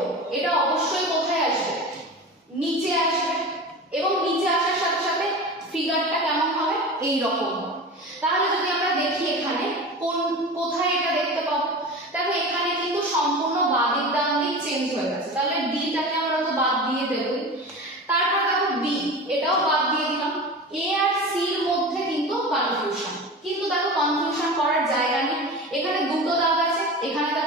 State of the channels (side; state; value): both; normal; correlation 0.31